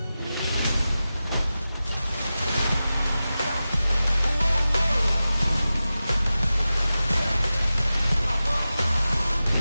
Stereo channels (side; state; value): both; inverted; correlation -0.94